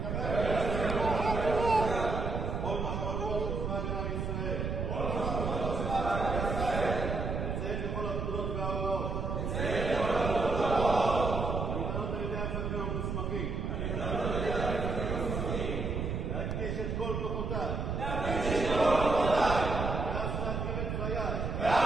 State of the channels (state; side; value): noise; right; rumble, 2 dB below the sound